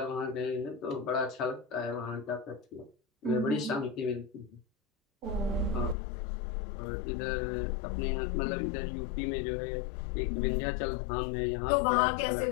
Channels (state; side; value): drops out; right; at 6.0 s